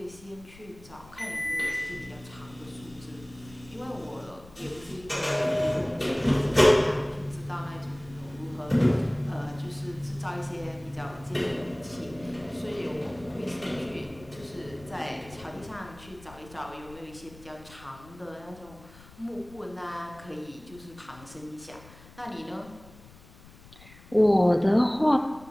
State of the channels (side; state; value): left; noise; rumble, 21 dB below the sound